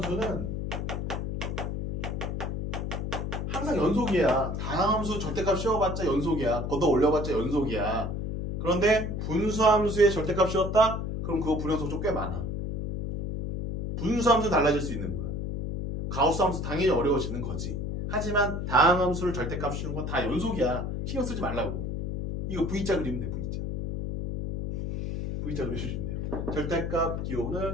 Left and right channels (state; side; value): noise; left; hum, 3 dB below the sound